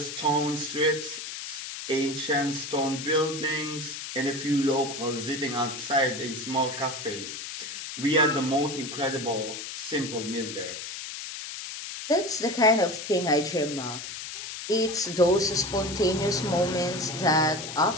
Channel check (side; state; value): left; noise; hiss, 8 dB below the sound